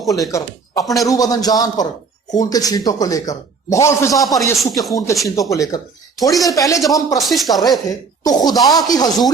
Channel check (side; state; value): left; quieter; 5.0 dB